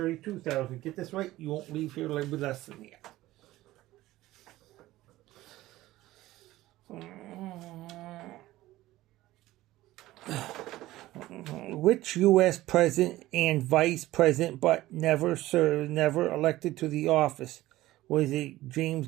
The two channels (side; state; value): left; quieter; 16.6 dB